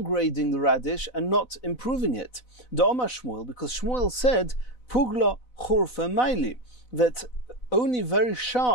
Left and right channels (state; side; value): late; right; 4.0 ms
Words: the radish and not improving it. The Omar Shmuel, because Shmuel said, Pugla churfa maili, that only very